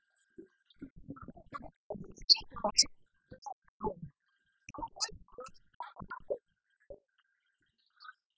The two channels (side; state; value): both; identical; correlation 1.00